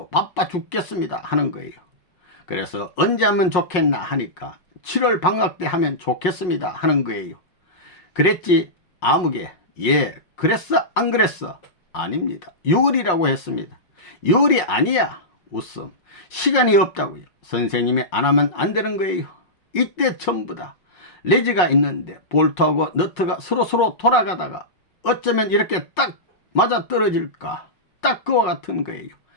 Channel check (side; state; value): right; late; 5.5 ms